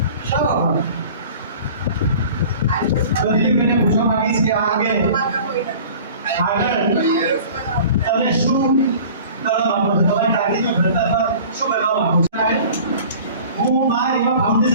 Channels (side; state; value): both; inverted; correlation -0.44